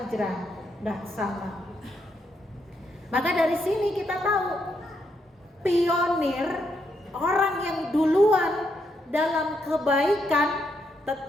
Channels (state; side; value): normal; both; correlation 0.78